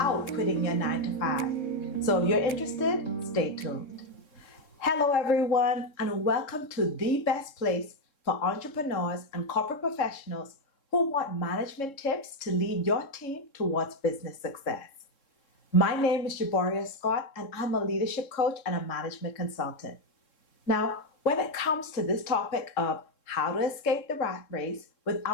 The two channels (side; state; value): right; late; 3.7 ms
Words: quitting your 9 to 5. So if you're interested, stay tuned. Hello everyone, and welcome to the best place for entrepreneurs and corporate professionals who want management tips to lead your team towards business success. My name is Jaboria Scott, and I'm a leadership coach and a management consultant. Now, when it comes to this topic of how to escape the rat race